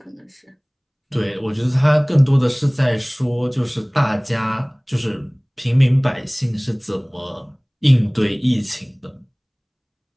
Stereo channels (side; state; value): both; identical; correlation 1.00